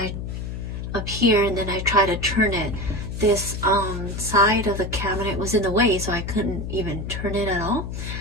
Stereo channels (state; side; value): noise; left; hum, 6 dB below the sound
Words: try to turn it, this side of the cabinet was in the way, so I couldn't even turn it at all.